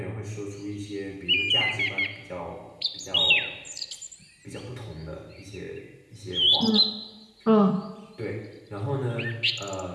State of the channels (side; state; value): both; identical; correlation 1.00